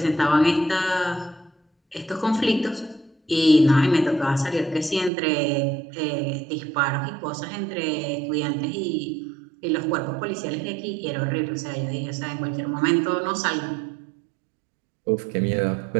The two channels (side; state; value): left; drops out; at 5.1 s